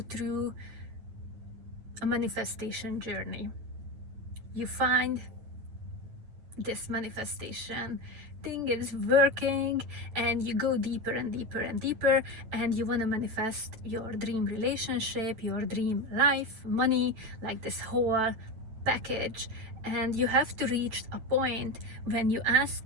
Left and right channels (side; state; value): left; late; 9.2 ms